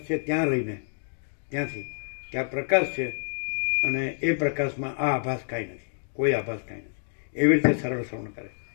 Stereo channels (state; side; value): silent; right; digital silence